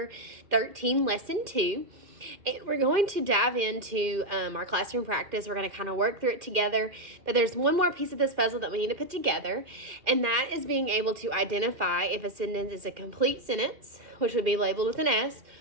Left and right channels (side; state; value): left; late; 2.5 ms